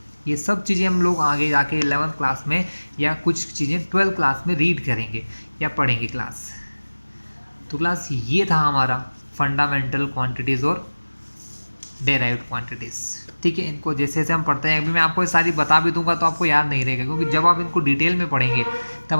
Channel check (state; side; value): inverted; both; correlation -1.00